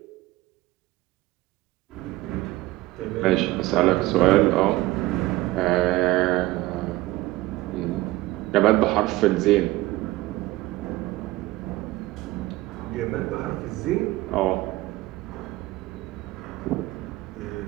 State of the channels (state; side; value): quieter; left; 18.4 dB